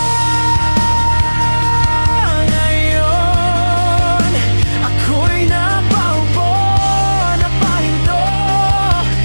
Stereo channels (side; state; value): both; inverted; correlation -1.00